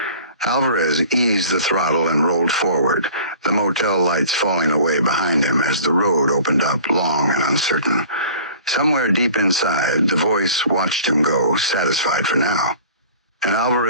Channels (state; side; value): inverted; both; correlation -0.45